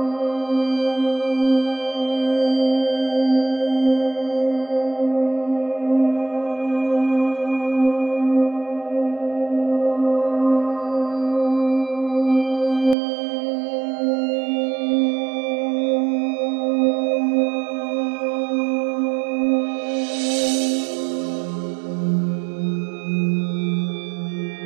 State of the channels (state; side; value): drops out; left; at 13.0 s